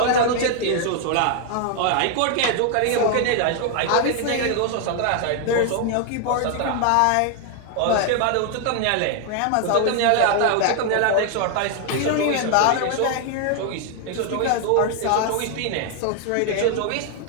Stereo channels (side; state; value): both; different; correlation 0.00